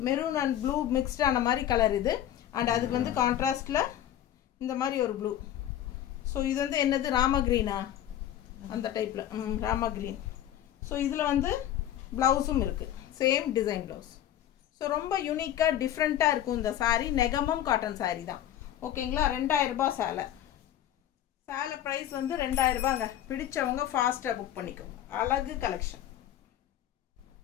மெரூன் அண்ட் ப்ளூ மிக்ஸ்டான மாதிரி கலர் இது அண்ட் அதுக்கு வந்து கான்ட்ராஸ்ட்ல இந்த மாதிரி ஒரு ப்ளூ. ஸோ இது வந்து என்னது ராமா கிரீனா? அந்த டைப்ல ராமா கிரீன். ஸோ இதுல வந்து பிளவுஸும் இருக்கு, சேம் டிசைன் பிளவுஸ். ஸோ ரொம்ப யூனிக்கா டிஃப்ரெண்டா இருக்கும் இந்த சாரி. நெகமம் காட்டன் சாரி தான் ஓகேங்களா? 2000 ரூபாய் சேலை பிரைஸ் வந்து 2000 ரூபாங்க. பிடிச்சவங்க ஃபாஸ்டா புக் பண்ணிக்கோங்க. அழகு கலெக்ஷன்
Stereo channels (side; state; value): right; quieter; 11.6 dB